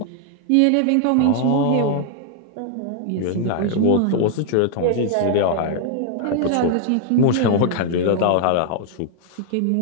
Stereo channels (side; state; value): both; different; correlation 0.00